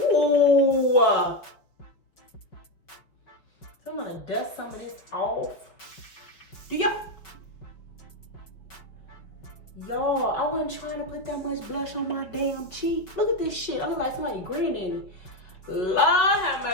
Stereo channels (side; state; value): right; late; 5.3 ms